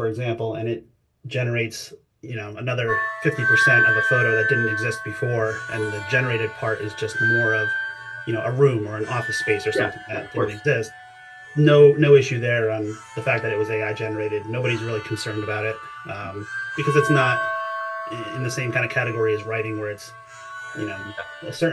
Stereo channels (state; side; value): identical; both; correlation 1.00